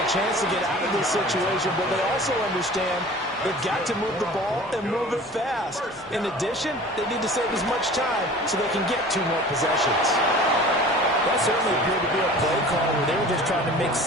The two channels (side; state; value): both; normal; correlation 0.42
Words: chance to get out of this situation, but they also understand they've got to move the ball and move it fast. In addition, they need to save as much time so they can get 2 more possessions. That certainly appeared to be a play call where they were just trying to make